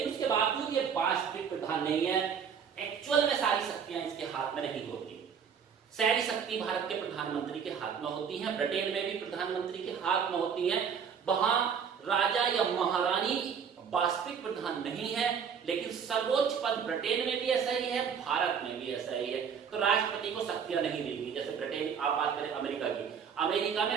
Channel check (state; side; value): quieter; left; 7.0 dB